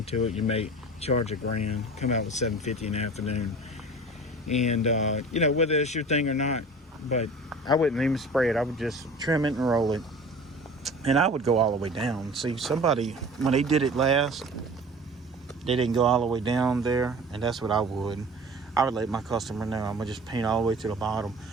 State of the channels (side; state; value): both; normal; correlation 0.41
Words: it, you may charge $1,000, come out with $750 in the afternoon. And you know, whether it's your thing or not, but I wouldn't even spray it. I would just trim it and roll it, and I would go all the way down. See, somebody, when they did it last, they didn't go all the way down there, and that's what I would let my customer know. I'm gonna just paint all the way to the bottom.